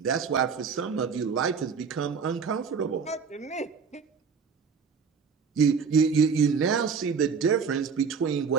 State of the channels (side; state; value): left; quieter; 5.9 dB